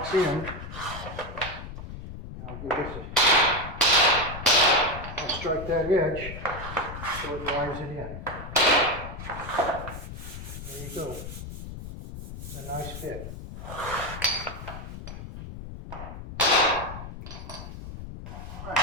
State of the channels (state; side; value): noise; left; rumble, 10 dB below the sound